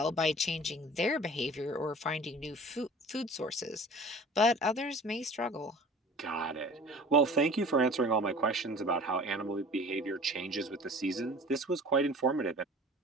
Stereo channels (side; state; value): both; normal; correlation 0.44